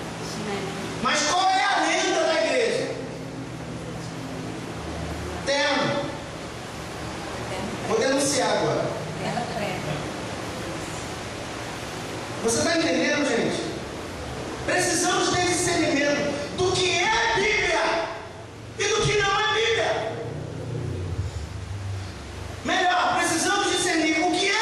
Mas qual é a lenda da igreja? Terno. Vou denunciar agora. Você está entendendo, gente? Precisamos ter discernimento do que é Bíblia e do que não é Bíblia. Melhor, precisamos discernir o que é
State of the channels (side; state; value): both; identical; correlation 1.00